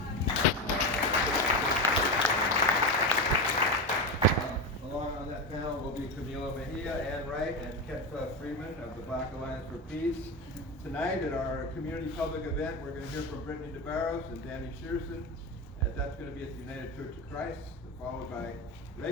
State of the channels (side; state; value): both; normal; correlation 0.18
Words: Along on that panel will be Camilo Mejia, Ann Wright, and Ketfa Freeman of the Black Alliance for Peace. Tonight at our community public event, we're going to hear from Brittany DeBarros and Danny Shearson. That's going to be at the United Church of Christ, followed by